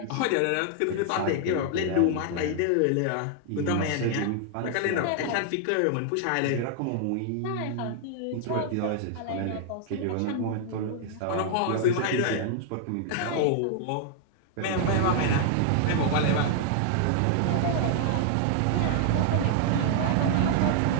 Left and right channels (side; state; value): both; different; correlation 0.00